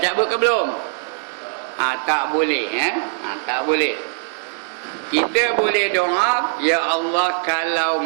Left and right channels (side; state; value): left; silent; digital silence